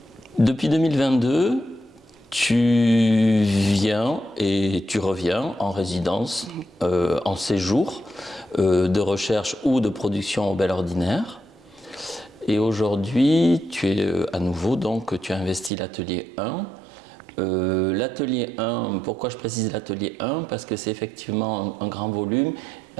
Depuis 2022, tu viens et tu reviens en résidence, en séjour de recherche ou de production au Bel Ordinaire. Et aujourd'hui, tu es à nouveau, donc tu as investi l'atelier 1. L'atelier 1, pourquoi je précise l'atelier 1? Parce que c'est effectivement un grand volume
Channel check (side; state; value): left; drops out; at 15.7 s